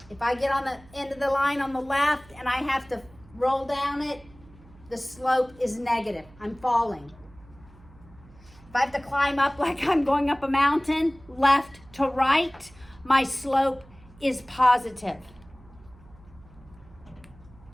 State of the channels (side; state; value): right; noise; hum, 24 dB below the sound